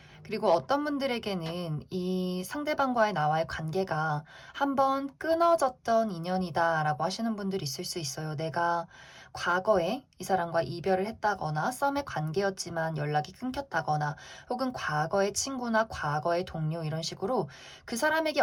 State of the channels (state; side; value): identical; both; correlation 1.00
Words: 그리고 어떤 분들에게는 이 상대방과의 나와의 관계가 한번 끊어졌던 인연이다라고 하시는 분들이 있을 수 있어요. 내가 과거에 이 사람과 이별을 했다거나 썸의 관계였지만 연락이 끊겼다거나 혹은 과거의 친구나 과거의 동료 이런 식으로 그 사람에게